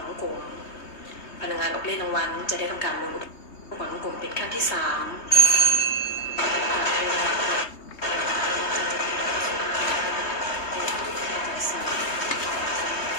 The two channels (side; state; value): right; late; 3.3 ms